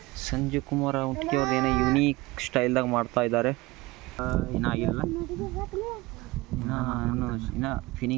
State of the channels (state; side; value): quieter; left; 21.1 dB